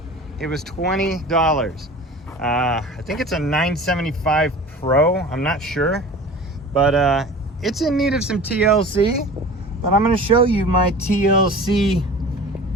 It was $20. I think it's a 975 Pro. I'm not sure, but it's in need of some TLC. But I'm going to show you my TLC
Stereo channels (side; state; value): both; normal; correlation 0.39